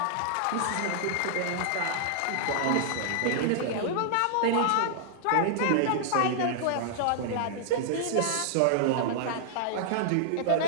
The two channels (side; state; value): both; different; correlation -0.01